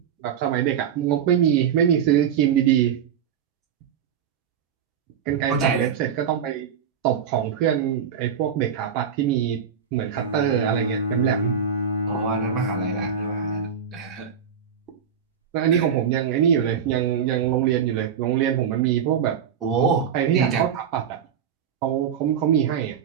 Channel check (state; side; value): quieter; left; 7.8 dB